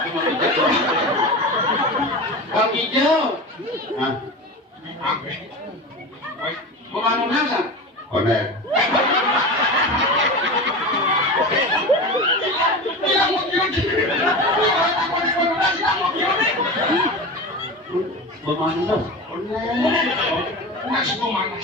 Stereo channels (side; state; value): both; normal; correlation 0.27